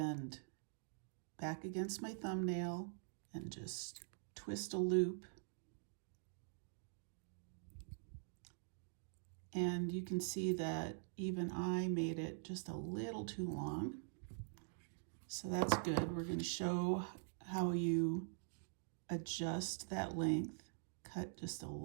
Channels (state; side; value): silent; left; digital silence